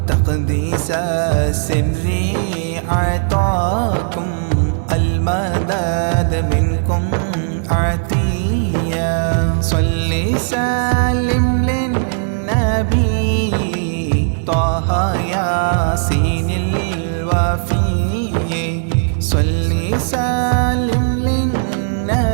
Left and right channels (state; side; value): silent; left; digital silence